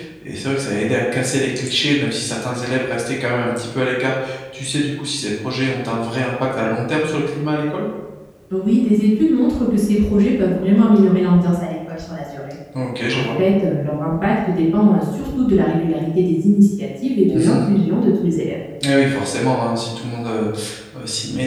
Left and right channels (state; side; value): identical; both; correlation 1.00